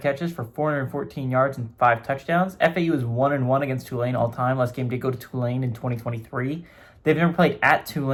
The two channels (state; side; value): identical; both; correlation 1.00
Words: catches for 414 yards and 5 touchdowns. FAU is 1-1 against Tulane all time. Last game did go to Tulane in 2023. They've never played at